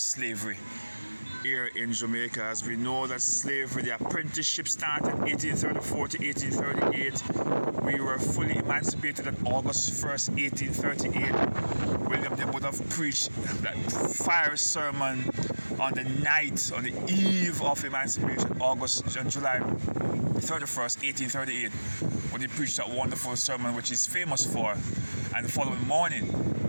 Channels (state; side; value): inverted; both; correlation -1.00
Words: here in Jamaica. As we know that slavery, the apprenticeship started 1834 to 1838. We were fully emancipated on August 1st, 1838. William Knibb would have preached that fiery sermon on the eve of emancipation, July 31st, 1838, when he preached that wonderful sermon which he's famous for. And the following morning,